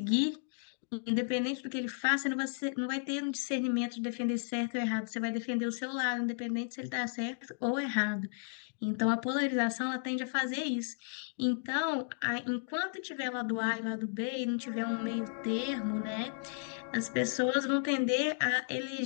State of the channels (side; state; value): right; silent; digital silence